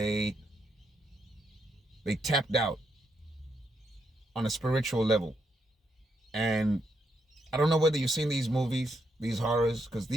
tapped out on a spiritual level. And I don't know whether you've seen these movies, these horrors, because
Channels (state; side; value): normal; both; correlation 0.79